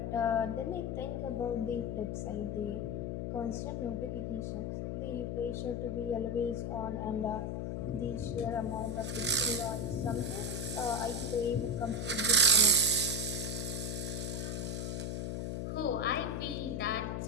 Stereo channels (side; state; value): left; noise; hum, 2 dB below the sound